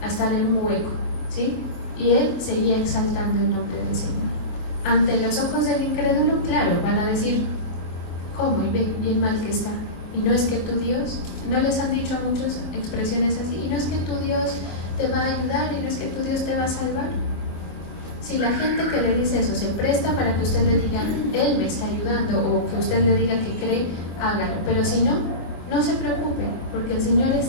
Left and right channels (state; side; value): late; right; 24 ms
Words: a estar en un hueco, ¿sí? Y él seguía exaltando el nombre del Señor. Ante los ojos del incrédulo, claro, van a decir, ¿cómo? Y ve, bien mal que está. Y no es que tu Dios, no les han dicho a muchos expresiones así, y no es que tu Dios te va a ayudar, y no es que tu Dios te va a salvar. Si la gente que le dice eso se presta para que usted le diga, Él me está ayudando, o que usted le diga que cree, hágalo. Pero si no, no se preocupe, porque el Señor